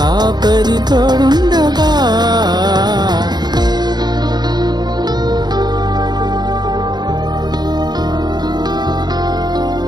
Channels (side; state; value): left; late; 0.20 ms